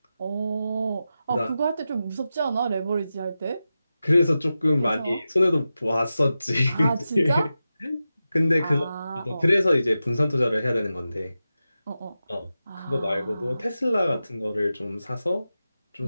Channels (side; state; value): both; inverted; correlation -0.92